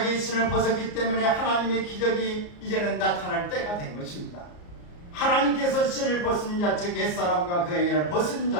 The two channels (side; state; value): right; late; 34 ms